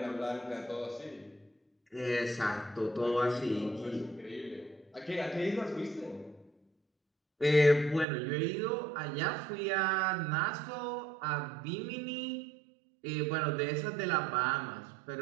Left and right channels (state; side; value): drops out; left; at 8.1 s